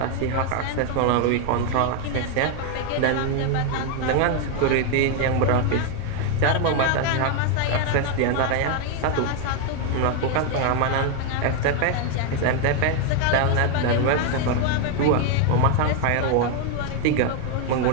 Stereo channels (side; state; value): both; different; correlation 0.01